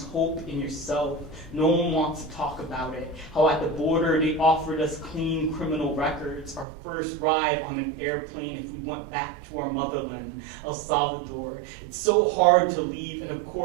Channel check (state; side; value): drops out; left; at 6.7 s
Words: hope in yourself. No one wants to talk about it. How at the border they offered us clean criminal records. Our first ride on an airplane if we went back to our motherland, El Salvador. It's so hard to leave, and of